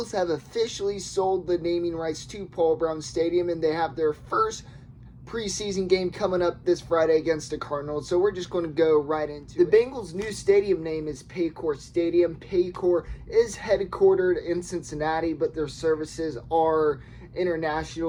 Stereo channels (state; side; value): identical; both; correlation 1.00